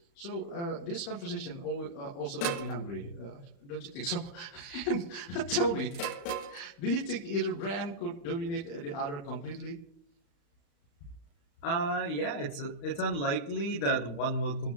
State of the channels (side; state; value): right; late; 35 ms